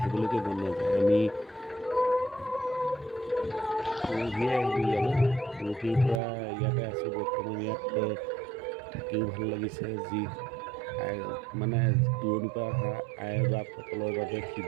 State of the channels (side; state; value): left; drops out; at 6.2 s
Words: মন নাযায় আমি পৰহিয়ে আহিলোঁ ইয়ালৈ পৰহিৰ পৰা ইয়াতে আছোঁ বৰ্তমান ইয়াত থাকিও ভাল লাগিছে যি মানে দূৰণিৰ পৰা অহা আই বাপসকলৰ বাবে